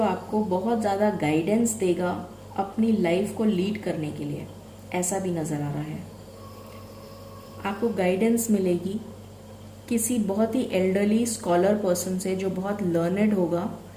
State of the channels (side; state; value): both; identical; correlation 1.00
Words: आपको बहुत ज़्यादा गाइडेंस देगा अपनी लाइफ को लीड करने के लिए, ऐसा भी नज़र आ रहा है। आपको गाइडेंस मिलेगी किसी बहुत ही एल्डरली स्कॉलर पर्सन से जो बहुत लर्नड होगा,